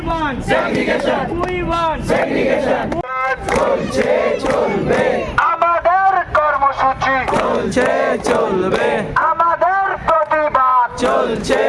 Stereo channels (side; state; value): both; identical; correlation 1.00